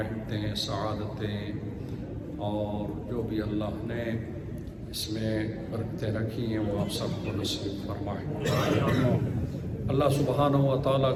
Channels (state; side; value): identical; both; correlation 1.00